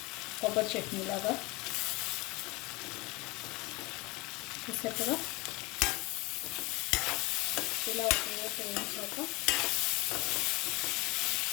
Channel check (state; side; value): quieter; right; 24.2 dB